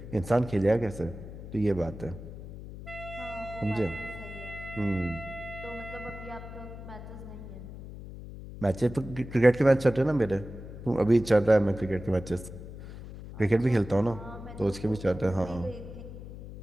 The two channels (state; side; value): noise; left; hum, 12 dB below the sound